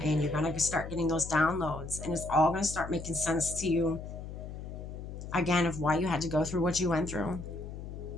You're going to start getting those downloads, and it's all going to start making sense to you, again, of why you had to go through what you went through.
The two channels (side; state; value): left; noise; hum, 9 dB below the sound